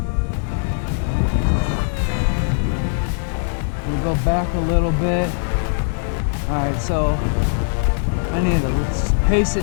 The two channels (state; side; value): silent; right; digital silence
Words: We'll go back a little bit. Alright, so I need to pace